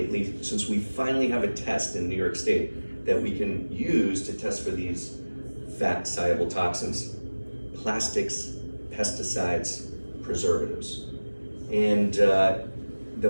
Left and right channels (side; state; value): both; inverted; correlation -1.00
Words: since we finally have a test in New York State that we can use to test for these fat-soluble toxins: plastics, pesticides, preservatives. And